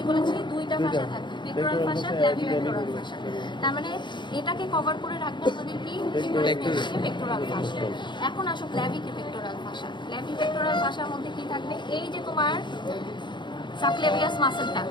বলেছি? দুইটা ফাসা থাকে, পেক্টোরাল ফাসা, ক্ল্যাভিপেক্টোরাল ফাসা। তার মানে এটাকে কভার করে রাখবে আমাদের কি? পেক্টোরাল ফাসা। এখন আসো ক্ল্যাভিপেক্টোরাল ফাসা। ক্ল্যাভিপেক্টোরাল ফাসার মধ্যে কি থাকবে? এই যে তোমার সাবক্লাভিয়াস মাসলটা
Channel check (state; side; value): late; right; 0.22 ms